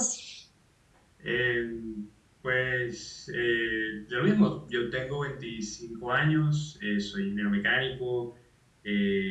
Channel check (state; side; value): identical; both; correlation 1.00